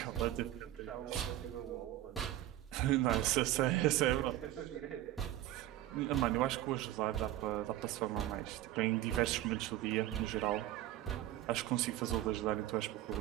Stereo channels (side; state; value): left; quieter; 14.0 dB